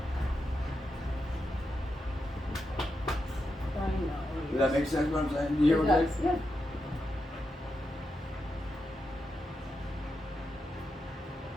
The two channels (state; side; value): normal; both; correlation 0.86